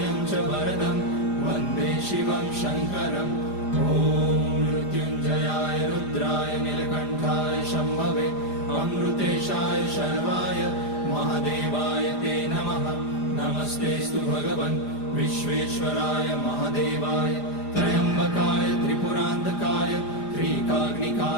च वरदं वन्दे शिवं शङ्करम् ॐ मृत्युञ्जयाय रुद्राय नीलकण्ठाय शम्भवे अमृतेशाय शर्वाय महादेवाय ते नमः। नमस्तेऽस्तु भगवन् विश्वेश्वराय महादेवाय त्र्यम्बकाय त्रिपुरान्तकाय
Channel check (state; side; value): late; right; 4.9 ms